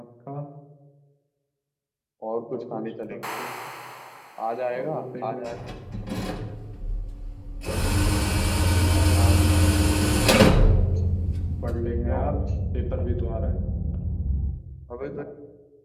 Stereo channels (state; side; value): identical; both; correlation 1.00